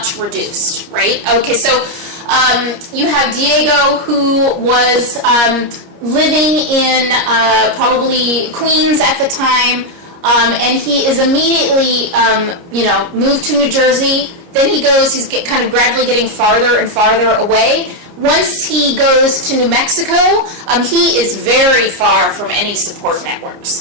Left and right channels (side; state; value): left; late; 30 ms